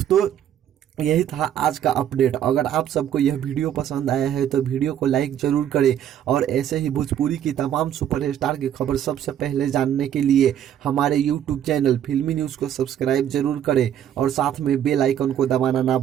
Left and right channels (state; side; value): quieter; left; 10.3 dB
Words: यही था आज का अपडेट। अगर आप सबको यह वीडियो पसंद आया है तो वीडियो को लाइक जरूर करें और ऐसे ही भोजपुरी की तमाम सुपरस्टार की खबर सबसे पहले जानने के लिए हमारे यूट्यूब चैनल फिल्मी न्यूज़ को सब्सक्राइब जरूर करें और साथ में बेल आइकन को दबाना ना